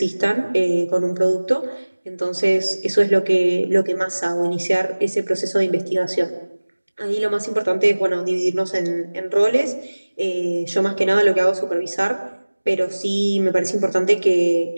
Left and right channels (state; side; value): inverted; both; correlation -1.00